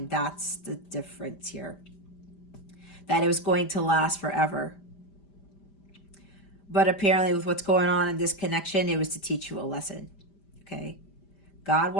That's the difference here. That it was going to last forever. But apparently with what's going on in this connection, it was to teach you a lesson. Okay? God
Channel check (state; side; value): late; right; 5.0 ms